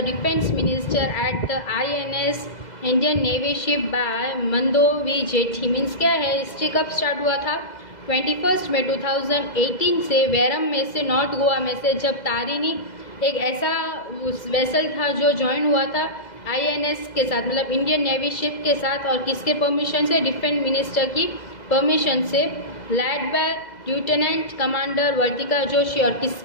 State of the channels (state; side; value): late; right; 2.0 ms